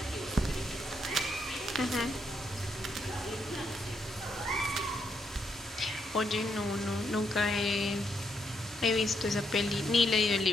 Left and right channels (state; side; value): normal; both; correlation 0.77